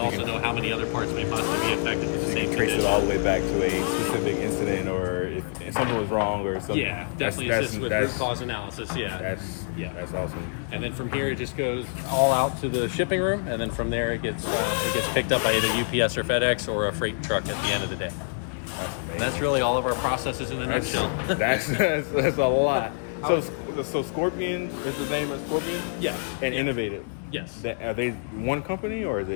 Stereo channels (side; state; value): right; silent; digital silence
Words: know how many other parts may possibly be affected. So you can trace it all the way back to a specific incident, or if something was wrong or something. Yeah, definitely assist with root cause analysis. That's awesome. And then from here it just goes all out to the shipping room, and then from there it gets picked up by either UPS or FedEx or a freight truck at the end of the day. That's amazing. And that's really all of our processes in a nutshell. That's a lot. So Scorpion is the name of Scorpion? Yeah. And Innovative? Yes. Are they one company, or is